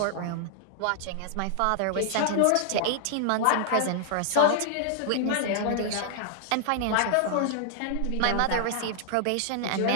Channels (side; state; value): both; different; correlation -0.01